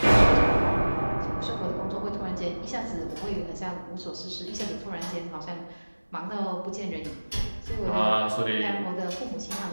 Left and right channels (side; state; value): both; inverted; correlation -1.00